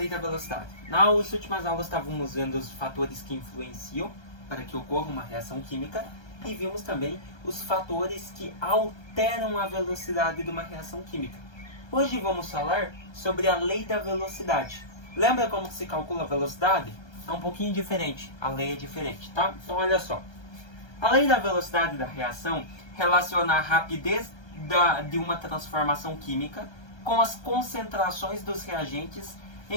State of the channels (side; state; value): right; late; 1.3 ms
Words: da velocidade? Nas últimas aulas estávamos vendo os fatores que influenciam para que ocorra uma reação química e vimos também os fatores que alteram a velocidade de uma reação química. Hoje vamos falar sobre a lei da velocidade. Lembra como se calcula a velocidade? É um pouquinho diferente, a lei é diferente, tá? Então olha só. A lei da velocidade da reação relaciona a rapidez de uma transformação química com as concentrações dos reagentes